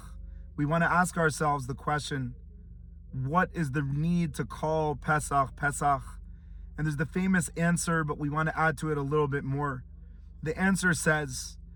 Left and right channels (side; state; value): both; identical; correlation 1.00